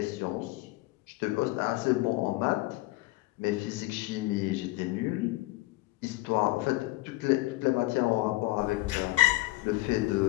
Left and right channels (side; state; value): right; quieter; 20.0 dB